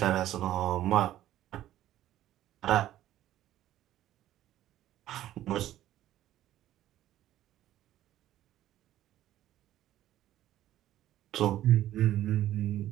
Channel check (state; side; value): quieter; left; 13.3 dB